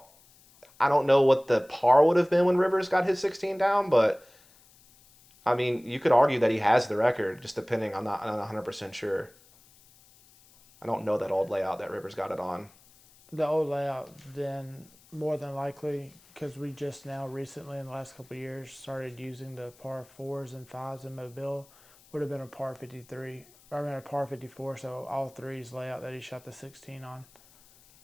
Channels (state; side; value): noise; left; hiss, 27 dB below the sound